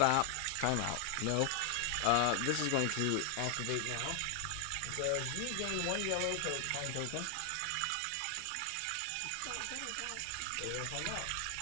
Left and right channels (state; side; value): different; both; correlation 0.00